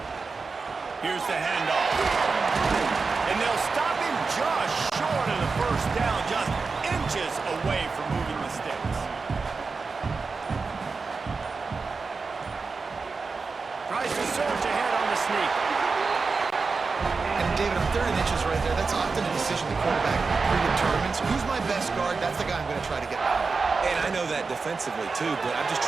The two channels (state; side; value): quieter; left; 4.5 dB